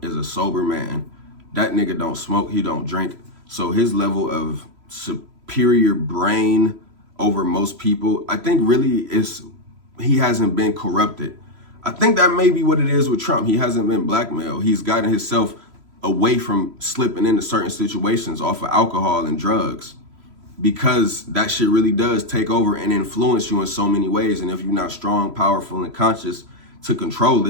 is a sober man. That nigga don't smoke, he don't drink. So his level of superior brain over most people, I think really is, he hasn't been corrupted. I think that may be what it is with Trump. He hasn't been blackmailed. He's gotten himself away from slipping into certain situations off of alcohol and drugs, because that shit really does take over and influence you in so many ways. And if you're not strong, powerful, and conscious to control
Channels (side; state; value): left; late; 3.0 ms